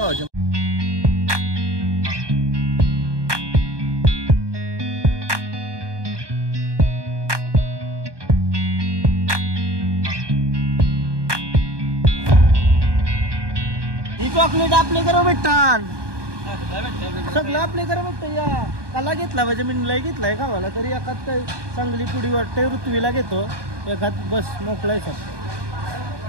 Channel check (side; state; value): left; late; 1.2 ms